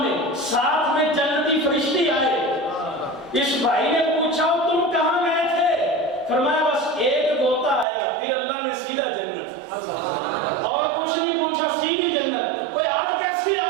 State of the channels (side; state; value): left; drops out; at 7.9 s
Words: ساتھ میں جنتی فرشتے آئے. اس بھائی نے پوچھا تم کہاں گئے تھے؟ فرمایا بس ایک غوطہ آیا, پھر اللہ نے سیدھا جنت, اور کچھ نہیں پوچھا, سیدھی جنت. کوئی آج کیسے